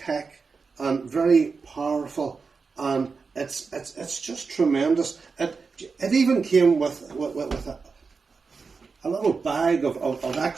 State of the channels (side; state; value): left; quieter; 4.8 dB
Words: and very powerful, and it's just tremendous. It even came with a little bag of